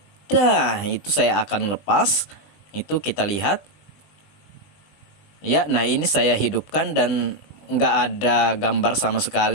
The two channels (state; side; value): late; right; 20 ms